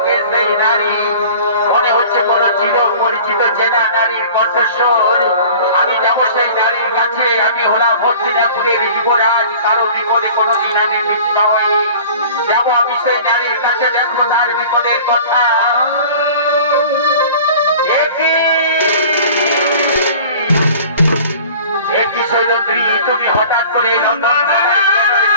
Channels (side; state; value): both; inverted; correlation -0.44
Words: কে সেই নারী? মনে হচ্ছে কোন চির পরিচিত চেনা নারীর কণ্ঠস্বর। আমি যাবো সেই নারীর কাছে। আমি হলাম হস্তিনাপুরের যুবরাজ, কারো বিপদে কোনোদিন আমি ভীত হই। যাবো আমি সেই নারীর কাছে, দেখবো তার বিপদের কথা। একই সৈরন্দ্রী, তুমি হঠাৎ করে লন্ডন